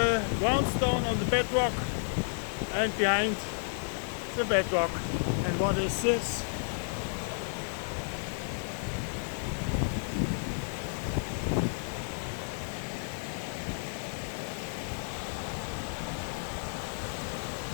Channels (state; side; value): silent; right; digital silence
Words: groundstone, on the bedrock, and behind the bedrock. And what is this?